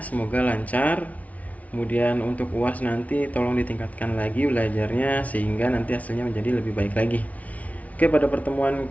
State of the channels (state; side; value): late; right; 0.069 ms